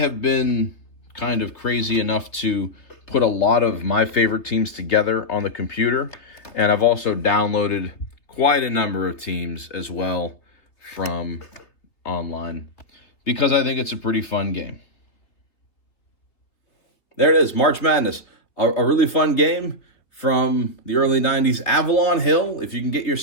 been kind of crazy enough to put a lot of my favorite teams together on the computer, and I've also downloaded quite a number of teams as well from online because I think it's a pretty fun game. There it is, March Madness, a really fun game from the early 90s. Avalon Hill, if you can get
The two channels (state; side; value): late; right; 3.3 ms